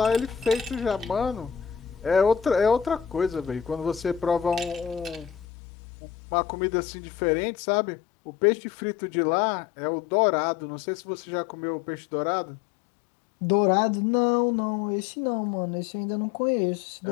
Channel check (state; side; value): drops out; right; at 5.5 s